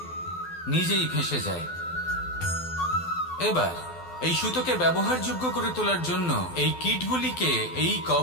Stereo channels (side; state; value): right; late; 12 ms